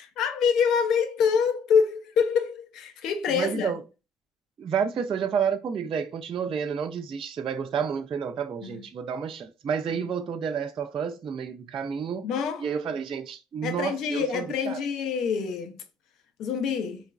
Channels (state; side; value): normal; both; correlation 0.58